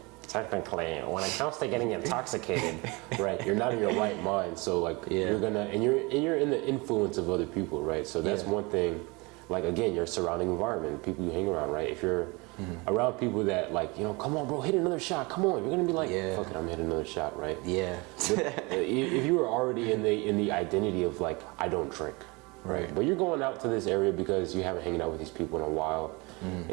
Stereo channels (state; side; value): quieter; left; 26.5 dB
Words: technically, when it comes to getting intoxicated, right, you're not in your right mind. So like you're gonna, and you're in the influence of other people, right? So that's one thing. Like again, your surrounding environment, people you hang around, right? If you're around people that like, come on, bro, hit another shot. Come on, you're gonna be like, fuck it, I'm hitting another shot, right? Yeah. If you were already in the identity of like, I don't drink, right? But you're going out to this area because you haven't hanging out with these people in a while, and